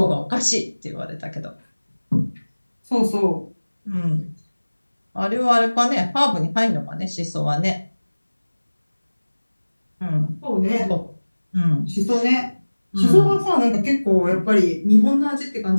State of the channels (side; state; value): both; inverted; correlation -1.00